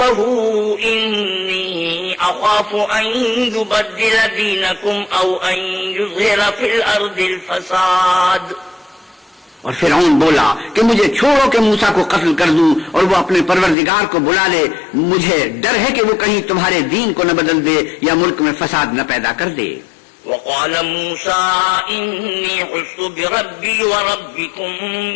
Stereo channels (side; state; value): right; drops out; at 13.8 s